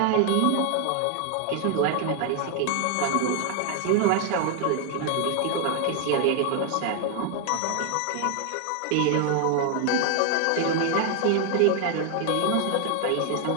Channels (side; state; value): both; different; correlation 0.00